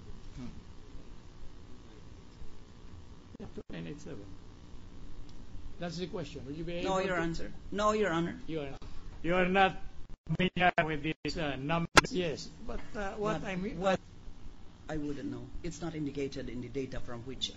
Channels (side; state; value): both; identical; correlation 1.00